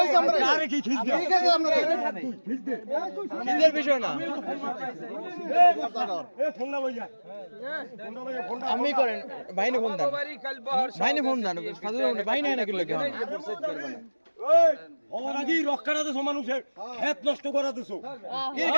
আমরা আরে কি খিচ দে ঠিক আছে আপনারা খিচ দে নিজের বিষয় না এ ফোন না ভাইয়া ফোন না ভাইয়া ফোন আপনি করেন ভাইনে ফোন দেন ভাইনে ফোন দেন সাধারণ ভাই নাই নাকি লোকে এই ওর আগেই রক্ষাটাতে সমানুষের হেত নষ্ট করা দিছো কি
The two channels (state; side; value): inverted; both; correlation -1.00